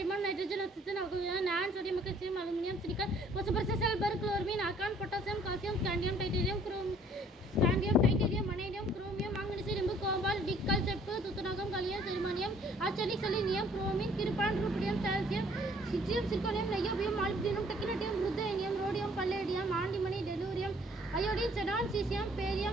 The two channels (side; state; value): both; normal; correlation 0.59